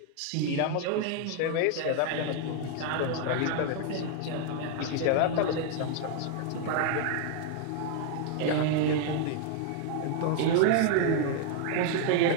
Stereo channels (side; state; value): both; different; correlation 0.00